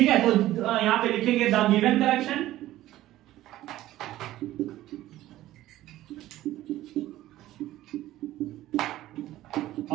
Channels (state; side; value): quieter; left; 14.9 dB